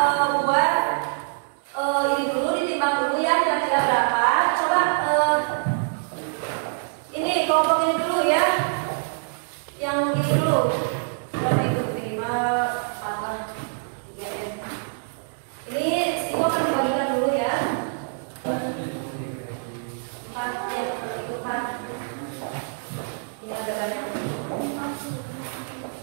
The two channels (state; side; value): silent; left; digital silence